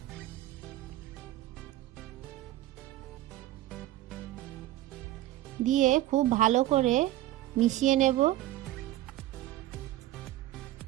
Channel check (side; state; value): left; quieter; 14.9 dB